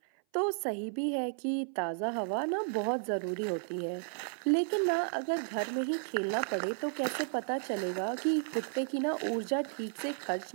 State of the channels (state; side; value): silent; left; 56 dB below the other